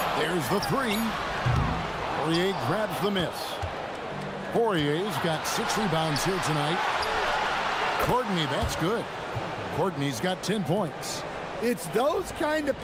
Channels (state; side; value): identical; both; correlation 1.00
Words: There's the three. Poirier grabs the miss. Poirier's got 6 rebounds here tonight. Courtney, that's good. Courtney's got 10 points. It's those kind of